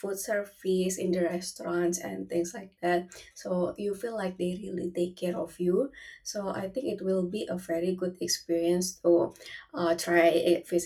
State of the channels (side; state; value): both; identical; correlation 1.00